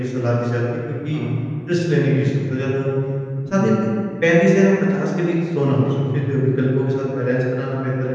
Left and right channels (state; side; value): identical; both; correlation 1.00